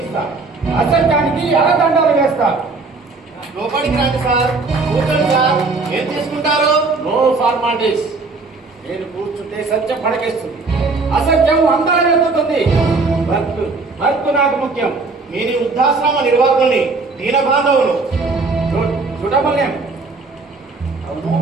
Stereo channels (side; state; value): left; quieter; 3.9 dB